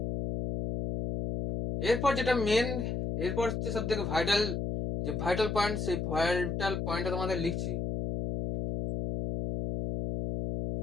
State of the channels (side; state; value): left; noise; hum, 2 dB below the sound